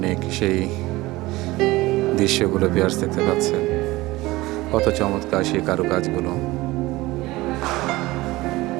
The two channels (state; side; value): quieter; left; 19.6 dB